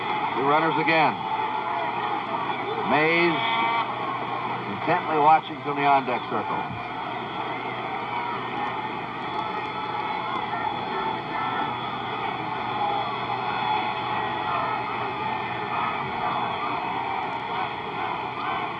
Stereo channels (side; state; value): both; identical; correlation 1.00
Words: 2 runners again. Mays intently watching from the on-deck circle.